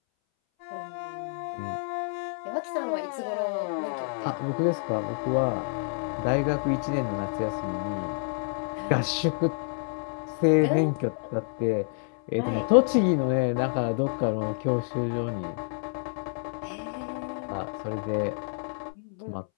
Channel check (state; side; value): silent; right; 59 dB below the other